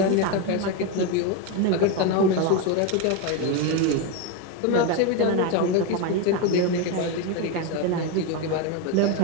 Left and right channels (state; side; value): different; both; correlation 0.03